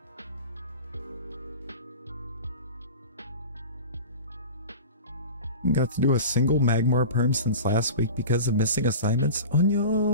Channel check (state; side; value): inverted; both; correlation -0.34